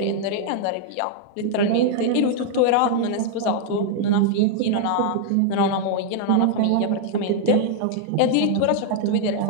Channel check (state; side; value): different; both; correlation 0.00